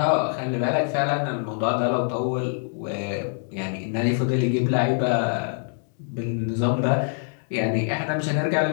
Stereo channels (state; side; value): silent; right; digital silence